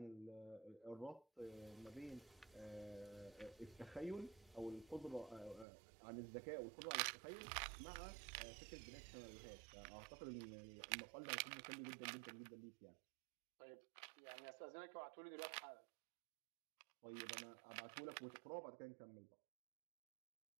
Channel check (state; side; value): drops out; left; at 5.7 s